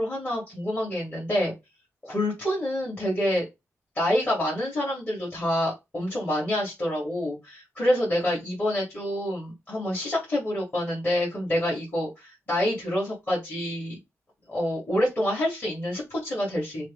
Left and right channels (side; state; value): both; normal; correlation 0.83